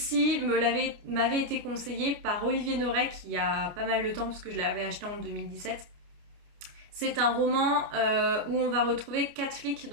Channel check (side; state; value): left; late; 29 ms